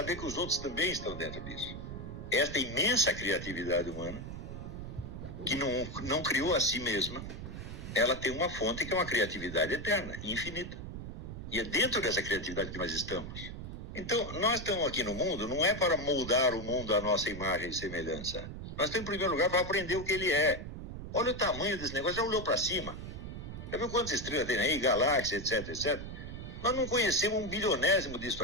que os outros também estão dentro disso. Esta imensa criatividade humana, que não criou a si mesma, ela tem uma fonte que é uma criatividade eterna, infinita. E é dentro dessa criatividade que nós estamos. Então, nós estamos aqui no mundo, não é para moldar o mundo à nossa imagem e semelhança. Nós estamos, em primeiro lugar, para aprender o que ele é. Olha o tamanho desse negócio, já olhou para cima? Já viu quantas estrelas tem aí, galáxias, etc, etc? Nós não conhecemos um bilionésimo disso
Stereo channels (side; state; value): right; noise; rumble, 8 dB below the sound